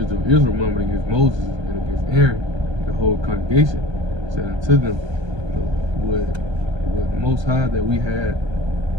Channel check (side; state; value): left; late; 1.3 ms